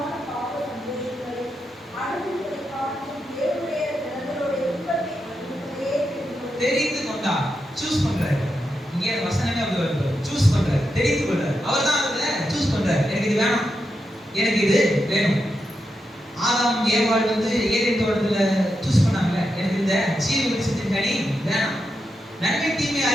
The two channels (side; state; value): both; normal; correlation 0.86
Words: தெரிந்து கொண்டார். சூஸ் பண்றாரு. இங்கே வசனமே அப்படி வருது. சூஸ் பண்றாரு, தெரிந்து கொள்றாரு. அவர் தான் அதுல சூஸ் பண்றாரு. எனக்கு இது வேணும், எனக்கு இது வேணும். ஆதாம் ஏவாள் வந்து ஏதேன் தோட்டத்துல சூஸ் பண்ணாங்கல்ல, எனக்கு இந்த ஜீவ விருட்சத்தின் கனி வேணும், நன்மை தீமை